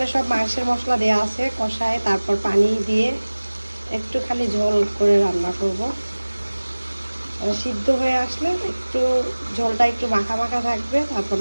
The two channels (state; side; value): inverted; both; correlation -1.00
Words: সব মাংসের মশলা দেওয়া আছে, কষায় তারপর পানি দিয়ে একটুখানি ঝোল করে রান্না করব। সিদ্ধ হয়ে আসলে একটু ঝোলটা একটু মাখা মাখা থাকবে, তারপর